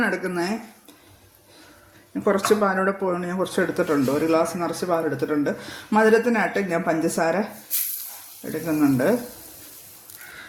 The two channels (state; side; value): identical; both; correlation 1.00